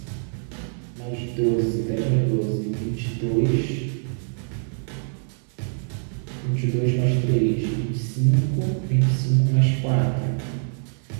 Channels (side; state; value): left; silent; digital silence